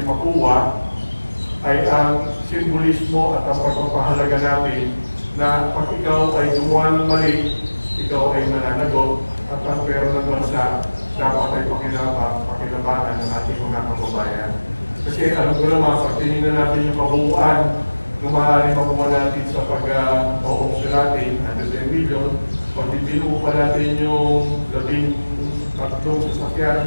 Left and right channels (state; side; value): inverted; both; correlation -1.00